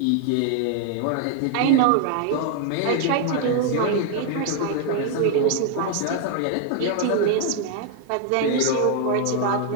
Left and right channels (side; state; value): both; different; correlation 0.00